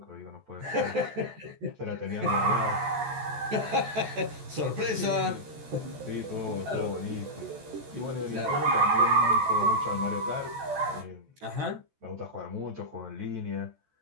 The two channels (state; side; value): late; left; 14 ms